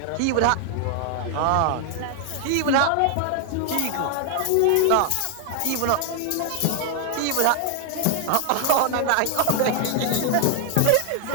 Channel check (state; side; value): different; both; correlation 0.00